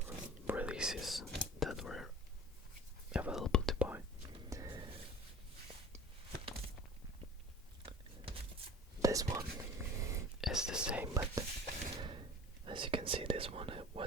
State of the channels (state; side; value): normal; both; correlation 0.42